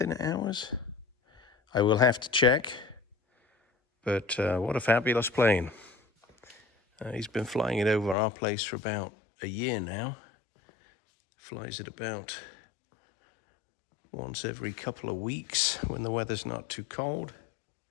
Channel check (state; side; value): drops out; right; at 8.2 s